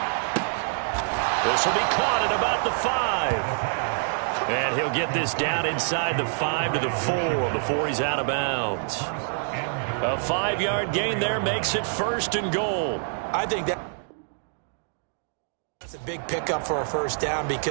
This will be caught at about the 5. And he'll get this down inside the 5 to the 4 before he's out of bounds. A 5-yard gain there makes it 1st and goal. I think that's a big pickup for a first down,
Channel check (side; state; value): left; silent; digital silence